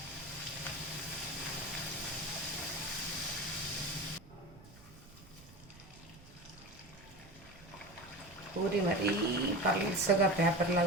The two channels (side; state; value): right; noise; rumble, 22 dB below the sound